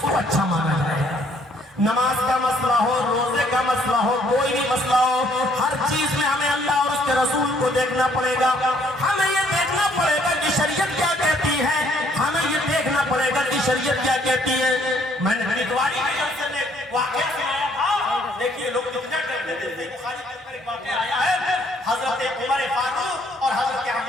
کو اچھا مانا جائے گا. نماز کا مسئلہ ہو, روزے کا مسئلہ ہو, کوئی بھی مسئلہ ہو, ہر چیز میں ہمیں اللہ اور اس کے رسول کو دیکھنا پڑے گا. ہمیں یہ دیکھنا پڑے گا کہ शरीयत क्या कहती है, हमें ये देखना पड़ेगा कि शरीयत क्या कहती है। मैंने हरिद्वारी के जलसे में वाकया सुनाया था, देखिए लोग कितना डरते थे। बुखारी के अंदर एक वाकया आया है, हजरत उमर फारूक और हजरत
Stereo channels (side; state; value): both; normal; correlation 0.64